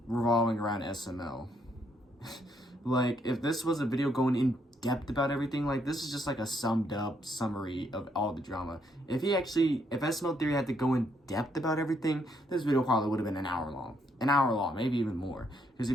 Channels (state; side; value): normal; both; correlation 0.73